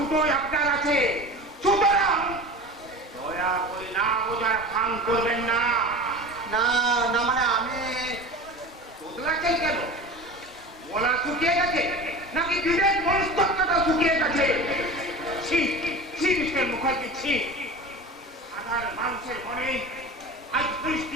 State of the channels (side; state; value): both; normal; correlation 0.33